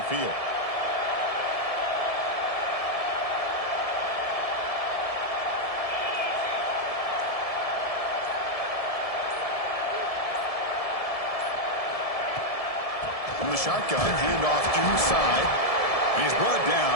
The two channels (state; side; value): late; right; 1.7 ms